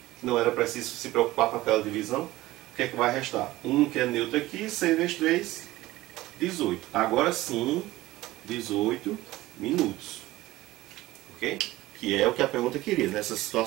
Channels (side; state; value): left; quieter; 17.6 dB